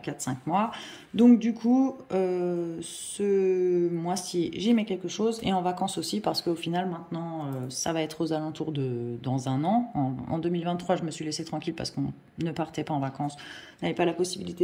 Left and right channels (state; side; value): identical; both; correlation 1.00